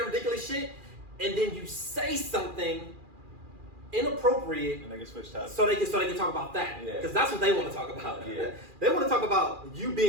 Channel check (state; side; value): late; left; 2.4 ms